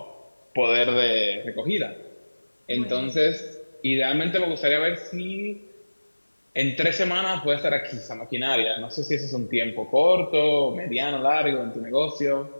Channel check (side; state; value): both; inverted; correlation -1.00